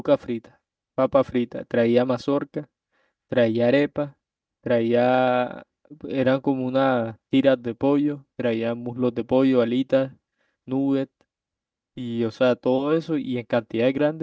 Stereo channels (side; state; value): both; identical; correlation 1.00